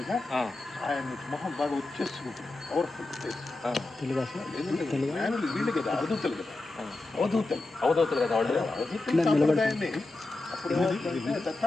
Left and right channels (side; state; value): right; quieter; 3.0 dB